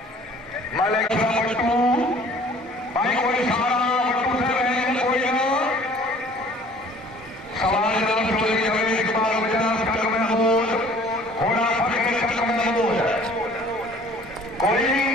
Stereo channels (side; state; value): both; normal; correlation 0.52